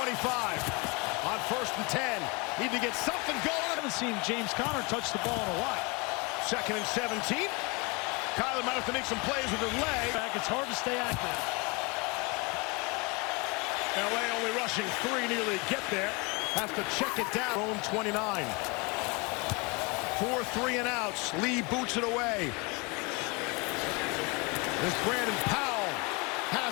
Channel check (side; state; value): right; quieter; 28.9 dB